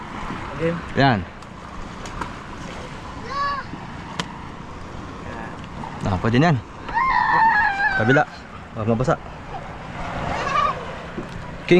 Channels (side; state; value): both; identical; correlation 1.00